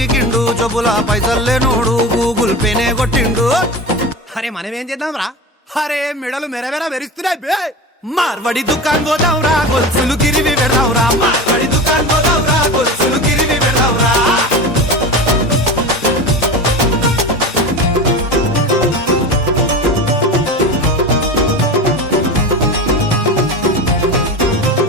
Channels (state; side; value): normal; both; correlation 0.27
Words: కిండు జబ్బుల పైసల్లేనోడు గూగుల్ పేనే కొట్టిండు అరే మనమేం చేద్దాం రా అరే మెడలు మెరవెర మెరుస్తున్నాయి బే మార్వడి దుకాన్ పోదాంరా గొలుసులు గిరివి పెడదాంరా మార్వడి దుకాన్ పోదాంరా గొలుసులు గిరివి పెడదాంరా